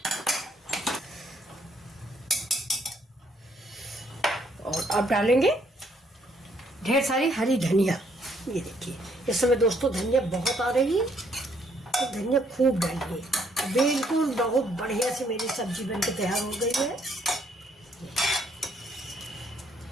और अब डालेंगे ढेर सारी हरी धनिया। ये देखिए इस समय दोस्तों धनिया बहुत आ रही है, तो धनिया खूब डालिए। बिल्कुल बहुत बढ़िया से मेरी सब्जी बनके तैयार हो गई है।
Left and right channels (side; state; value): both; normal; correlation 0.68